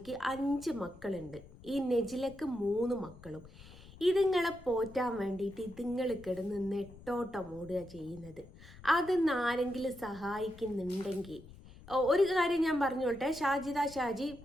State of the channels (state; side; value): noise; left; rumble, 19 dB below the sound